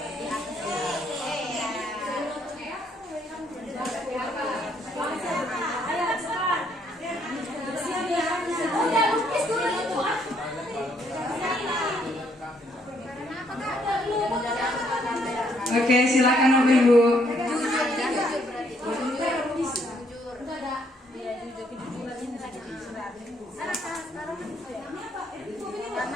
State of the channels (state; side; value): normal; both; correlation 0.70